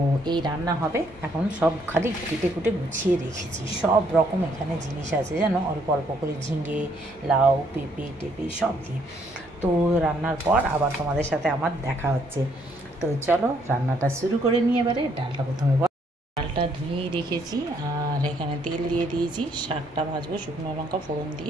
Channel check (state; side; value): normal; both; correlation 0.69